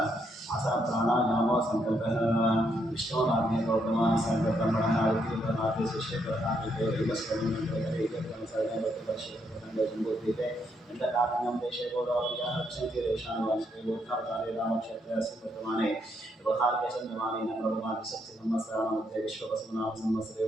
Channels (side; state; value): both; normal; correlation 0.76